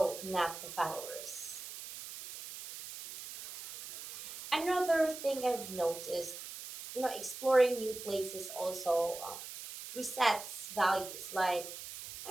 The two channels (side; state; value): right; noise; hiss, 11 dB below the sound